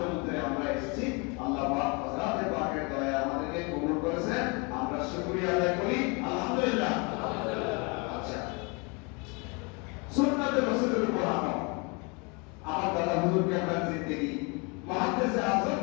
আমরা এসেছি, আল্লাহ পাক হযরতে পাকের দয়া আমাদেরকে কবুল করেছেন, আমরা শুকরিয়া আদায় করি আলহামদুলিল্লাহ। আচ্ছা, সুন্নাতে রাসূলের উপর আমল। আমার দাদা হুজুর কেবলার জিন্দেগি, মুহাদ্দিসে আযম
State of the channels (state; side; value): quieter; right; 31.0 dB